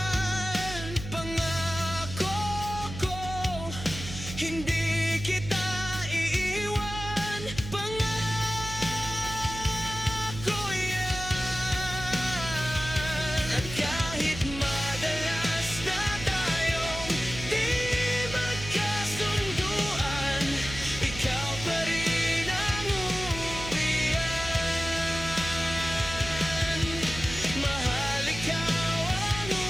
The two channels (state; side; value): noise; right; hum, 10 dB below the sound